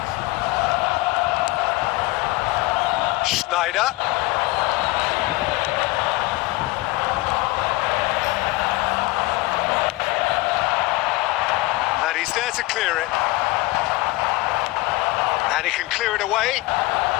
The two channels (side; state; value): right; quieter; 21.2 dB